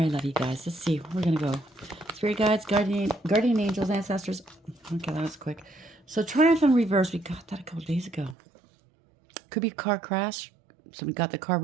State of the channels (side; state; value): left; drops out; at 8.3 s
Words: I love you guys. Let's see. We're going to go. Spirit guides, guardian angels, ancestors. Okay, that was quick. So Triumph in Reverse. We got that a couple days ago. Could be a car crash. Somebody got the car